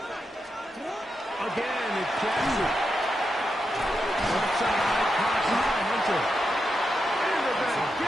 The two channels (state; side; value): normal; both; correlation 0.86